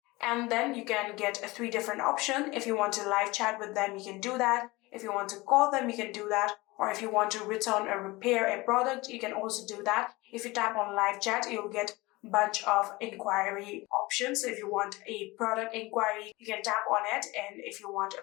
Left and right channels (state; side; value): quieter; right; 22.0 dB